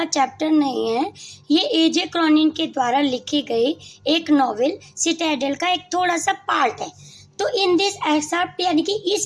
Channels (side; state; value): both; identical; correlation 1.00